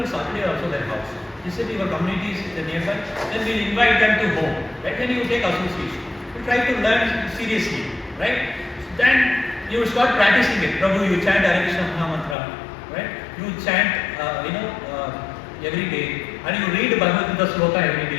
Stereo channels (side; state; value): right; drops out; at 12.4 s